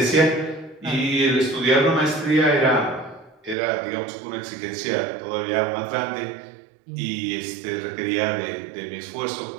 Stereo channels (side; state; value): left; drops out; at 3.6 s